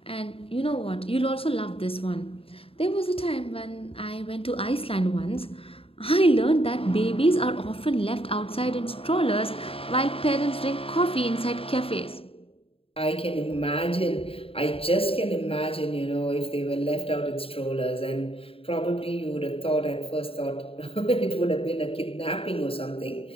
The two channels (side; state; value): right; late; 0.27 ms